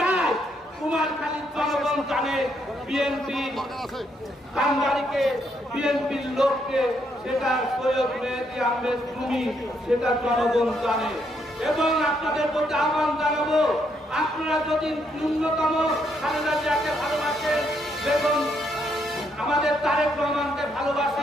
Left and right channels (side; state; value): both; normal; correlation 0.74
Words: কুমার খালির জনগণ জানে বিএনপি কান্দারিকে, বিএনপির লোককে, সেটা সৈয়দ মেহেদী আহমেদ তুমি, সেটা জনগণ জানে। এবং আপনাদের প্রতি আহ্বান জানাবো, আপনারা যদি ন্যূনতম খালেদা জিয়াকে ভালোবাসেন এবং আমাদের তারেক রহমানকে